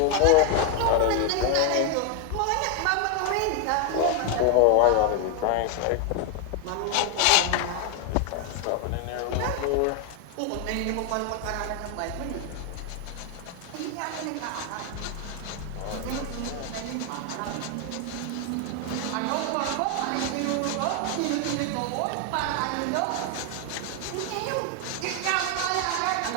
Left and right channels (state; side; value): different; both; correlation 0.01